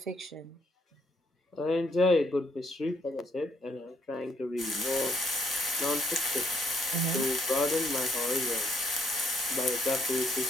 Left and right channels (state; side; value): normal; both; correlation 0.69